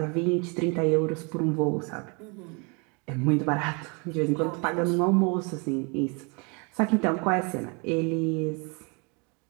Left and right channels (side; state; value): left; quieter; 32.6 dB